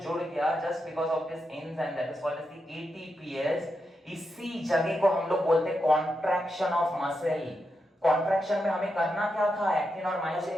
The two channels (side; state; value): both; normal; correlation 0.86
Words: गया just because of this enzyme that is called as the ATPase, इसी जगह को हम लोग बोलते हैं कॉन्ट्रैक्शन ऑफ मसल। कॉन्ट्रैक्शन में हमें करना क्या था? एक्टिन और